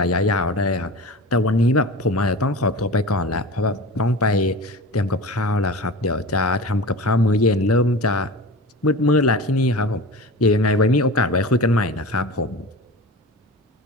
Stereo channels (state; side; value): normal; both; correlation 0.32